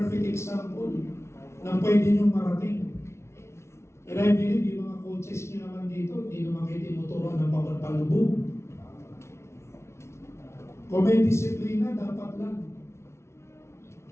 example na pwede nyo marating. And I believe yung mga coaches nyo naman dito, hindi naman kayo tinuturuan ng pagpapalubog. Kung may disiplina, dapat lang.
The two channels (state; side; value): late; right; 0.13 ms